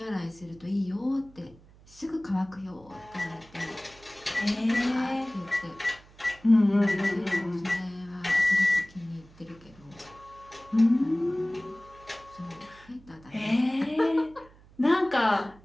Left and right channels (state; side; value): noise; right; hum, 25 dB below the sound